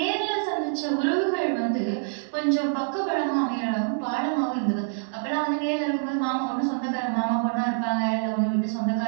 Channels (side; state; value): left; silent; 61 dB below the other